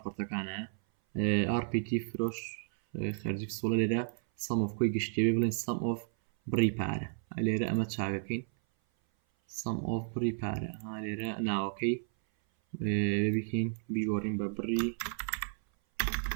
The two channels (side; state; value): left; silent; 56 dB below the other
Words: RPT فرۆش خەرجی پسوڵە لێرە سەم ئۆف کۆی گشتیە بێ بڵێن سەم ئۆف بڕی پارە لێرە ئەمە چاکەکەین سەم ئۆف بڕی پارە لێرە ناوەکەی بکەین بیگۆڕین بە بڕی